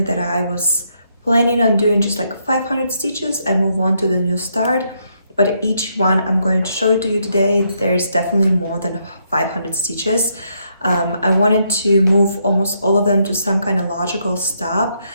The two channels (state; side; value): inverted; both; correlation -0.76